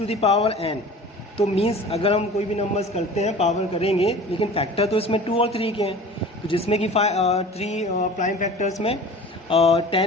द पावर n, तो मीन्स अगर हम कोई भी नंबर्स करते हैं पावर करेंगे, लेकिन फैक्टर तो इसमें 2 और 3 के हैं, तो जिसमें कि 3 प्राइम फैक्टर्स में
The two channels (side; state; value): both; normal; correlation 0.41